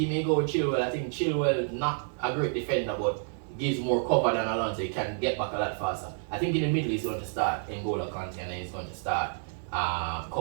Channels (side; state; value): left; silent; digital silence